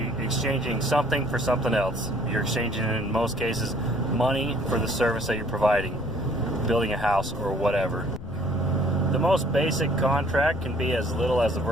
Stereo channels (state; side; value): noise; left; rumble, 11 dB below the sound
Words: exchanging something for something else. You're exchanging, in most cases, money for the service that you're providing, building a house or whatever. The most basic contract can be as little as a